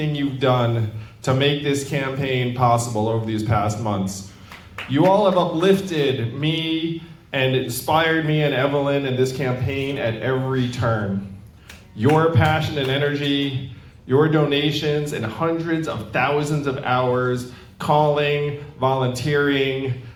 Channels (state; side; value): identical; both; correlation 1.00